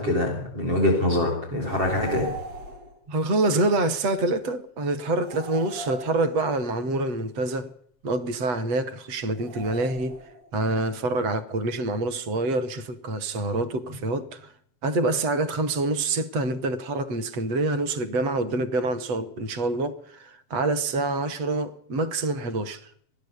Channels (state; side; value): late; left; 7.5 ms